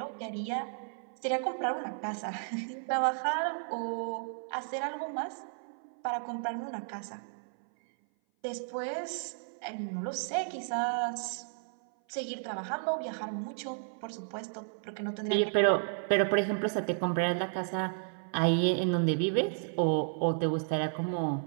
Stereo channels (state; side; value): silent; left; 56 dB below the other